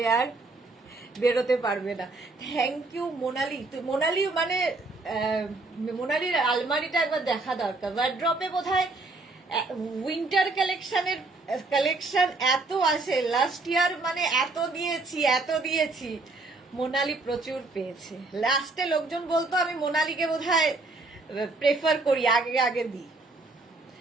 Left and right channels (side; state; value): left; quieter; 3.3 dB